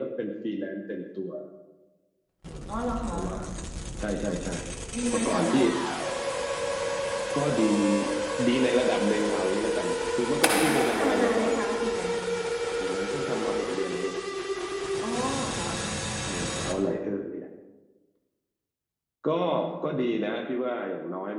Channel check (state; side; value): identical; both; correlation 1.00